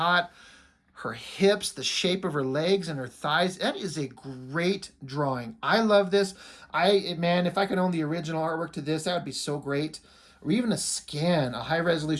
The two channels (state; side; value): identical; both; correlation 1.00